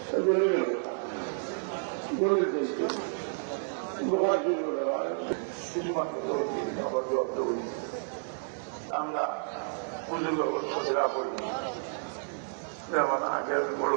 আমরা পুজোর ব্যবস্থা করি। যেমন আগে আমি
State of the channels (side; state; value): left; silent; digital silence